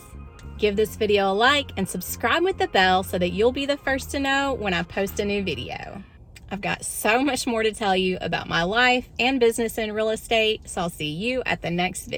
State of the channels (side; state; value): both; identical; correlation 1.00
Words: Give this video a like and subscribe with the bell so that you'll be the first to know when I post a new video. I've got so much more to tell you about my life and business in real estate, so I'll see you at the next